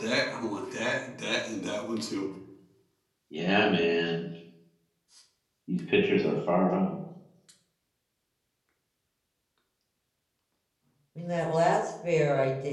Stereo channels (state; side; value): identical; both; correlation 1.00